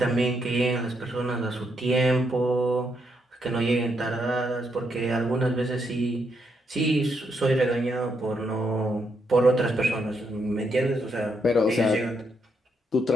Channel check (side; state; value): both; normal; correlation 0.78